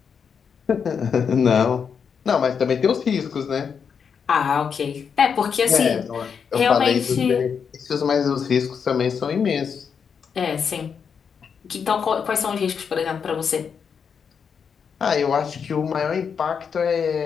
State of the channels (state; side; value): quieter; right; 6.6 dB